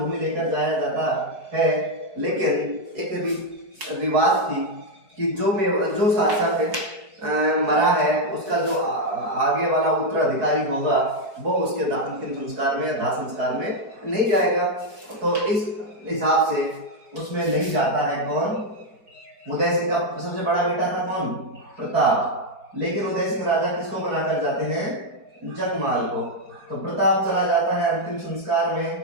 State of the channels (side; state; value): left; late; 4.6 ms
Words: लेकर जाया जाता है। लेकिन एक रिवाज थी कि जो शासक मरा है उसका जो आगे वाला उत्तराधिकारी होगा वो उसके अंतिम संस्कार में या दाह संस्कार में नहीं जाएगा। तो इस हिसाब से उसमें नहीं जाता है कौन? उदय सिंह का सबसे बड़ा बेटा था कौन? प्रताप। लेकिन उदय सिंह राजा किसको बनाकर जाते हैं? जगमाल को। तो प्रताप चला जाता है अंतिम संस्कार